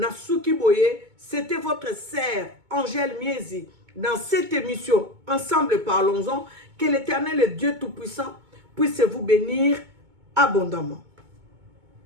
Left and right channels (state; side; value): late; left; 2.2 ms